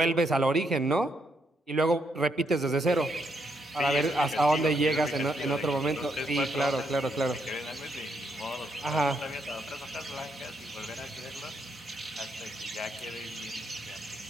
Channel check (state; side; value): normal; both; correlation 0.76